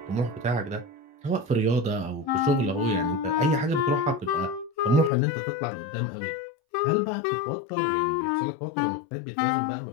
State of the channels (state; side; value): drops out; right; at 5.1 s